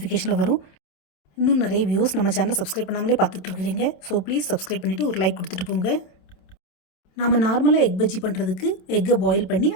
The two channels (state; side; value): late; right; 27 ms